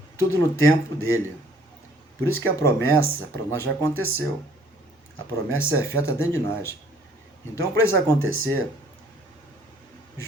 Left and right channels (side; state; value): both; normal; correlation 0.59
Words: tudo no tempo dele. Por isso que a promessa para nós já aconteceu. A promessa é feita dentro de nós. Então, para isso acontecer,